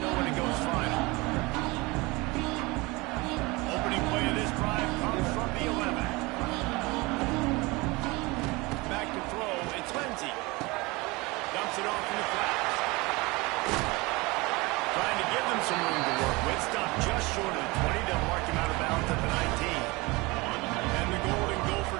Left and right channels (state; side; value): quieter; left; 24.0 dB